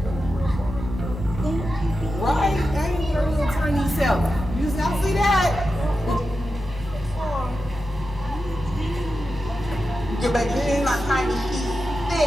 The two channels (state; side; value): normal; both; correlation 0.90